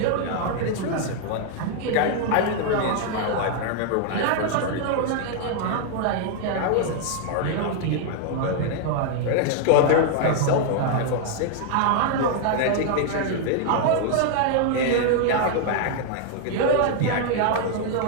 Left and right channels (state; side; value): different; both; correlation 0.00